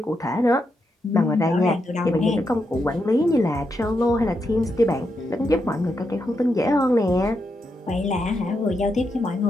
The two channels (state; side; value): normal; both; correlation 0.83